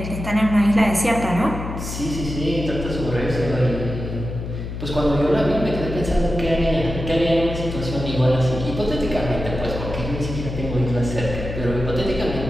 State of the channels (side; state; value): left; noise; hum, 7 dB below the sound